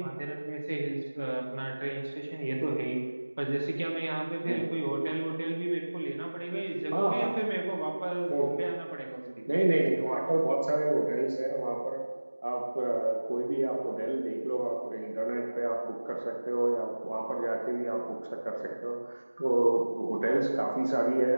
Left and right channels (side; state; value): both; inverted; correlation -1.00